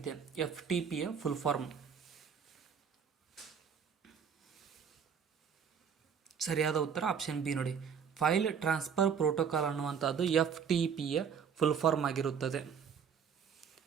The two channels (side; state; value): left; quieter; 7.1 dB